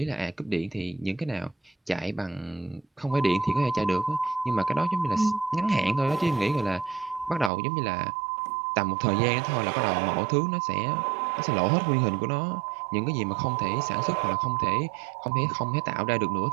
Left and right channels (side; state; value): left; drops out; at 7.5 s